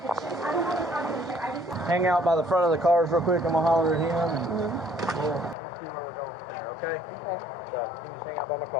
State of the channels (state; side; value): drops out; right; at 5.6 s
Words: Hang out by the front of the cars real quick. I'm gonna holler at him and we'll see where we're going from there. Okay? Okay. So you can just hang out by my